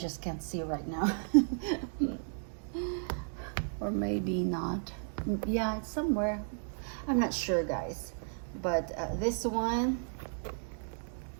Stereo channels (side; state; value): left; silent; digital silence